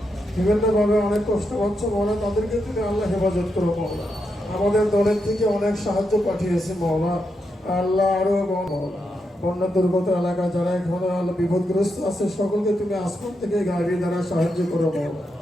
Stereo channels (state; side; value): normal; both; correlation 0.84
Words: বিভিন্নভাবে অনেক কষ্ট পাচ্ছে মাওলা, তাদেরকে তুমি আল্লাহ হেফাজত করো মাওলা। আমাদের দলের থেকে অনেক সাহায্য পাঠিয়েছে মাওলা, আল্লাহ আরো মাওলা। বন্যা দুর্গত এলাকা যারা এখন বিপদগ্রস্ত আছে সকলকে তুমি আসমান থেকে গাড়ি দ্বারা সাহায্য করো মাওলা।